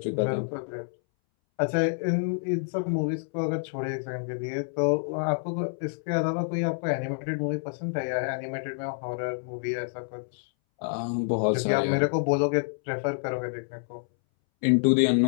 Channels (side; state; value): right; silent; 59 dB below the other